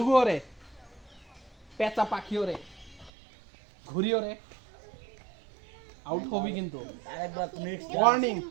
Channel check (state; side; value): drops out; left; at 3.1 s